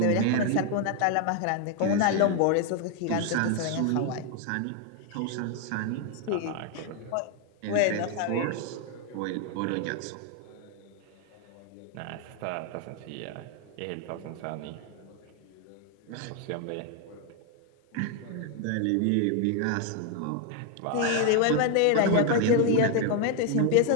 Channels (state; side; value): different; both; correlation 0.01